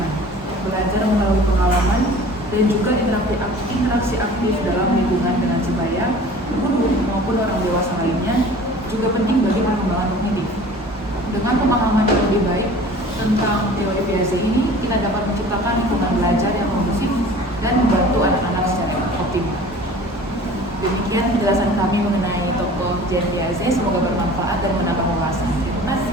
belajar melalui pengalaman, dan juga interaksi aktif dalam lingkungan dengan sebaya, guru maupun orang dewasa lainnya juga penting bagi dengan pemahaman yang lebih baik tentang teori Piaget ini, kita dapat menciptakan lingkungan belajar yang kondusif dan membantu anak-anak secara optimal. Demikian penjelasan kami mengenai tokoh Jean Piaget. Semoga bermanfaat dan menambah wawasan. Terima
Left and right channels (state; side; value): normal; both; correlation 0.44